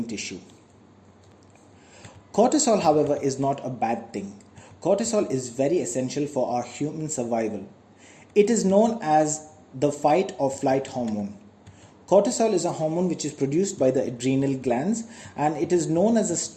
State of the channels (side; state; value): both; identical; correlation 1.00